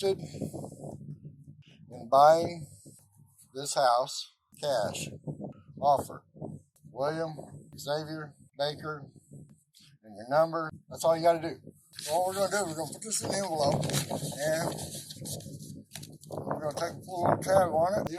in buying this house cash. Offer. William Xavier Baker and your number. That's all you got to do. So what we're going to do, we're going to put this in the envelope and we're going to take a little tab on it,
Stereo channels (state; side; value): identical; both; correlation 1.00